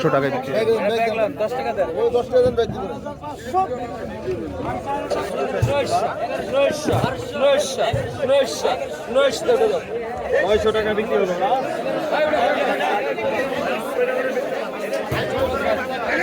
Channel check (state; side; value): identical; both; correlation 1.00